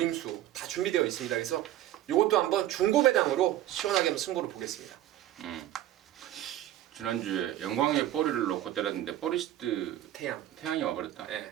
다 준비되어 있습니다. 그래서 이것도 한번 중고 배당으로 시원하게 한번 승부를 보겠습니다. 지난주에 영광의 포리를 놓고 때렸는데 포리스트 태양이 와버렸다. 네.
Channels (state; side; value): quieter; left; 13.3 dB